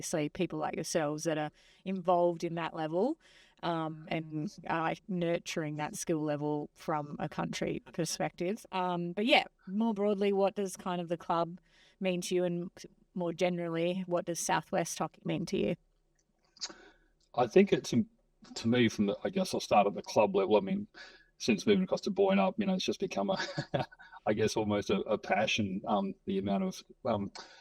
people like yourselves that are involved in that level and nurturing that skill level from a country perspective. But yeah, more broadly, what does kind of the club mean to you, and more generally, what does Southwest Hockey mean to you? I think it's, to me, I guess I'll start at the club level. I mean, since moving across to Boyne Up, it's just become I guess almost a passion, the amount of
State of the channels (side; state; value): both; identical; correlation 1.00